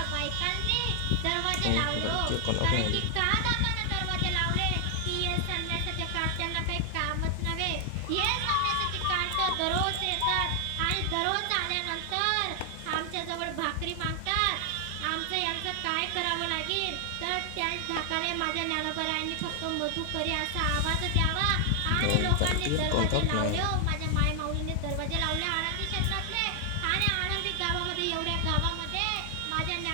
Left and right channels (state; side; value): different; both; correlation 0.00